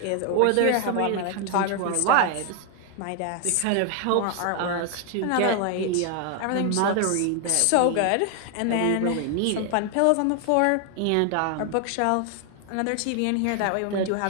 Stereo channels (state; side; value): different; both; correlation 0.00